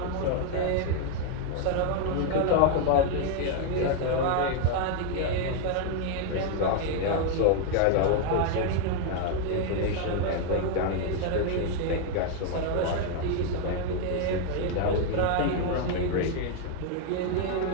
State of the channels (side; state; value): both; different; correlation 0.00